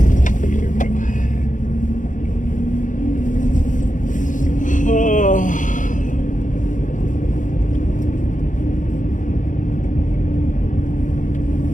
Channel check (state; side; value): late; right; 0.37 ms